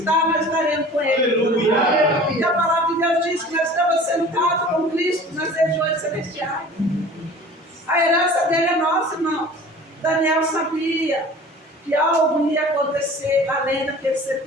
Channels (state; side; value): normal; both; correlation 0.43